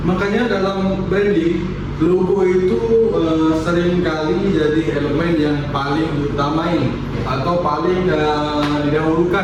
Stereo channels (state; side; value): identical; both; correlation 1.00